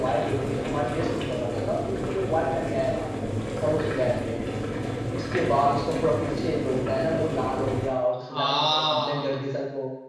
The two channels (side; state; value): both; identical; correlation 1.00